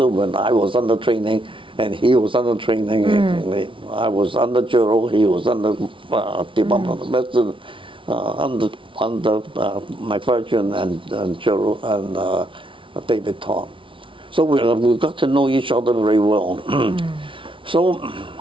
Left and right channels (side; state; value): left; late; 0.25 ms